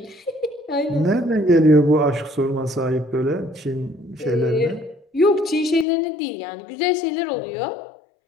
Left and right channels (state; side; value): drops out; right; at 5.9 s